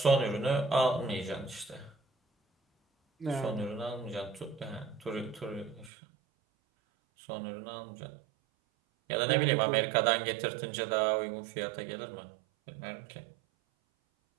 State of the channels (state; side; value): drops out; left; at 5.9 s